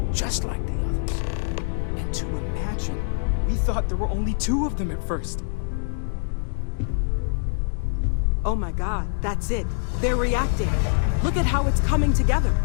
Just like the others. And to imagine, we thought there were only 2 of them at first. Oh my god, that's it. They're reacting. Look at how it's coming together.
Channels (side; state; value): right; silent; digital silence